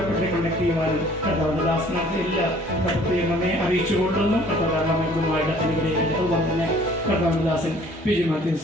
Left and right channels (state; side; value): normal; both; correlation 0.54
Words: കണ്ടക്ട് ചെയ്യുവാനും കർത്താവിന്റെ ദാസനത്തെ എല്ലാ പ്രത്യേകം നമ്മെ അറിയിച്ചുകൊള്ളുന്നു. കർത്താവുമായിട്ട് അനുഗ്രഹിക്കട്ടെ. അതുപോലെ തന്നെ കർത്താവിന്റെ ദാസൻ PG മാത്യു